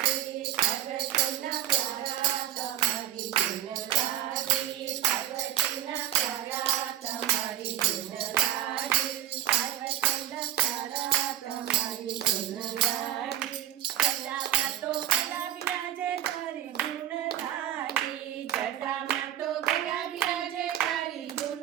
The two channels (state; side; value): quieter; left; 12.4 dB